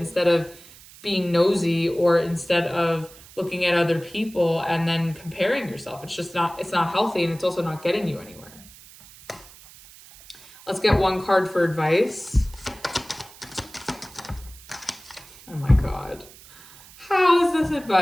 of being nosy or instead of looking at other people and then comparing yourself. It's not healthy, and it's also not getting you anywhere. Let's get one card for advice. Oh my God. How is this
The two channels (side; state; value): right; noise; hiss, 21 dB below the sound